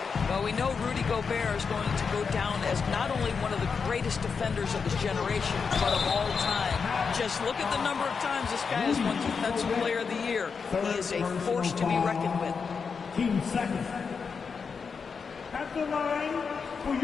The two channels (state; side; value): quieter; right; 5.6 dB